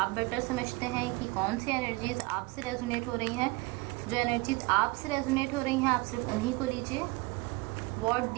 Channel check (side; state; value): left; quieter; 23.6 dB